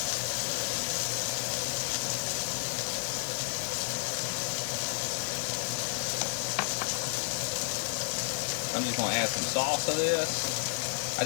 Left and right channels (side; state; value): right; silent; digital silence